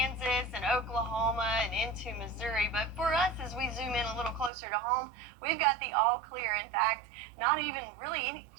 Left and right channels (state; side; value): drops out; left; at 4.5 s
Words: and Oklahoma and into Missouri. But for us, as we zoom in a little closer to home, we've got the all clear. In fact, not even really any,